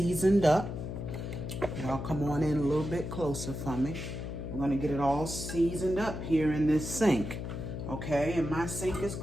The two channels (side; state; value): left; noise; hum, 6 dB below the sound